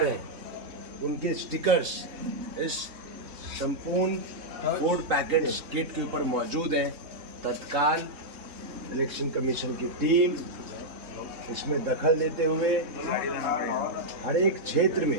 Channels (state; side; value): late; left; 3.6 ms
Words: हैं उनके स्टिकर्स इस संपूर्ण फूड पैकेट्स किट के ऊपर मौजूद हैं। तत्काल इलेक्शन कमीशन की टीम इसमें दखल देते हुए हर एक क्षेत्र